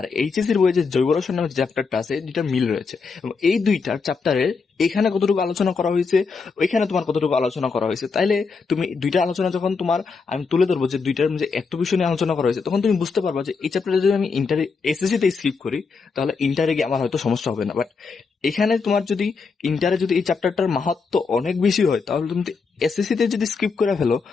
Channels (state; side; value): quieter; right; 4.9 dB